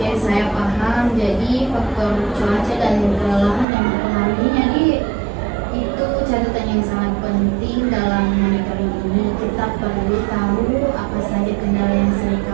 saya paham. Jadi faktor cuaca dan kelelahan yang mempengaruhinya itu catatan yang sangat penting dalam monitoring ini. Kita perlu tahu apa saja kendala yang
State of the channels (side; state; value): left; drops out; at 3.7 s